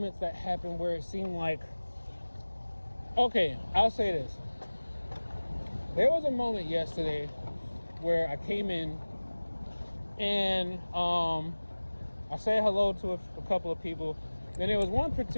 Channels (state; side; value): inverted; both; correlation -1.00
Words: that happen where it seemed like, okay, I'll say this. There was a moment yesterday where I came in and I said hello to a couple of people. Then there was one